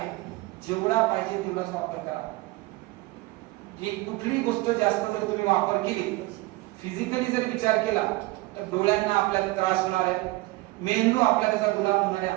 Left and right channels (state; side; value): quieter; left; 21.1 dB